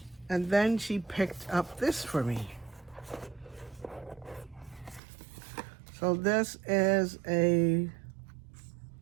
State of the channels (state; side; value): drops out; left; at 5.0 s